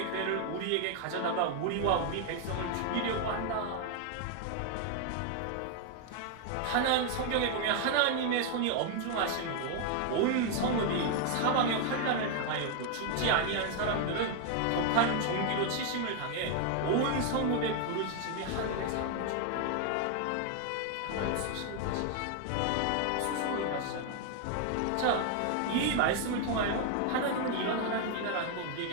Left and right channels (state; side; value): different; both; correlation 0.00